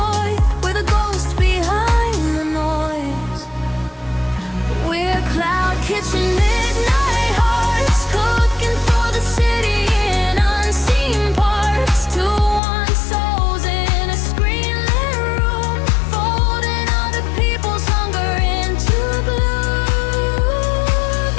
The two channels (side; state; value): right; drops out; at 12.6 s